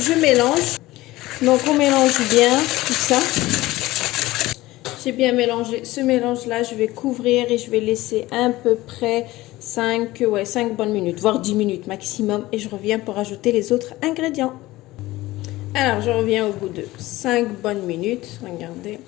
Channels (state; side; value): quieter; right; 18.1 dB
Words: mélange. Donc on mélange bien tout ça. J'ai bien mélangé ce mélange-là. Je vais couvrir et je vais laisser à peu près 5 bonnes minutes, voire 10 minutes maximum. Et je reviens pour ajouter les autres ingrédients. Alors, je reviens au bout de 5 bonnes minutes. Regardez.